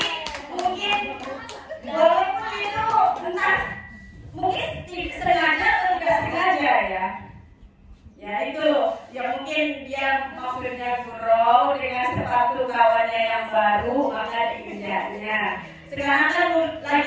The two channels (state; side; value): identical; both; correlation 1.00